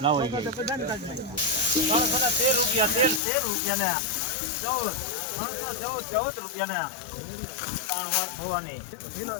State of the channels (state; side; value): drops out; right; at 3.2 s